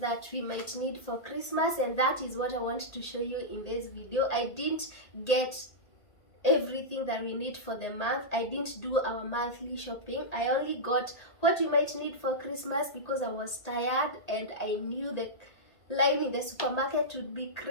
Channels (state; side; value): late; right; 1.8 ms